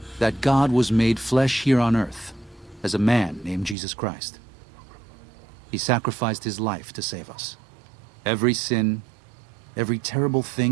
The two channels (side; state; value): left; drops out; at 3.8 s